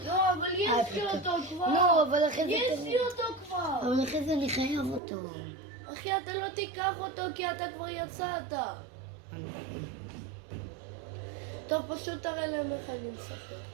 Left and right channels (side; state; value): left; drops out; at 5.0 s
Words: לא, אבל יש לי אותו כבר. לא, אבל אחרי זה... יש לי אותו כבר. אבל אחרי זה אני חייב אותו. אחי, אתה לא תיקח אותו כי אתה כבר יצאת. טוב, פשוט תראה להם איך אני משחק.